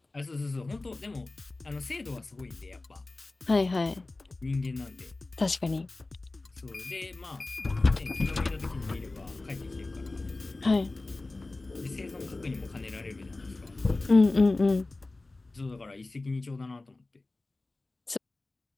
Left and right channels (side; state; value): right; quieter; 3.2 dB